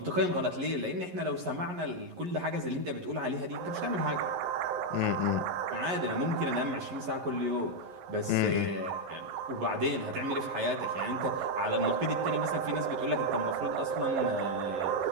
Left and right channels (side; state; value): left; late; 11 ms